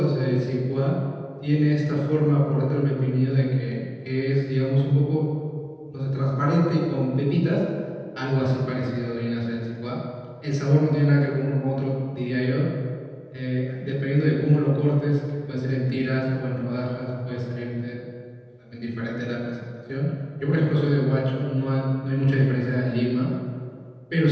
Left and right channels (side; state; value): both; identical; correlation 1.00